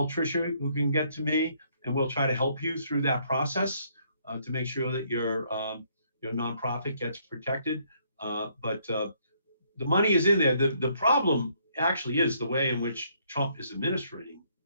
Tricia, who can get to me, and we'll try to help you through that process to make sure that your nonprofit gets protected. But the money is in there. The problem actually is the way in which Trump is administrating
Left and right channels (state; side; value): inverted; both; correlation -0.68